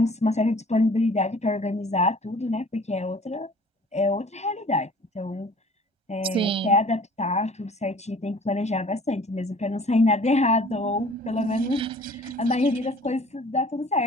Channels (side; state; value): both; normal; correlation 0.50